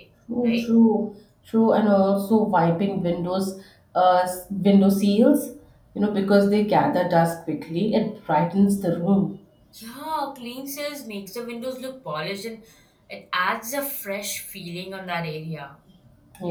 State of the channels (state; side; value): identical; both; correlation 1.00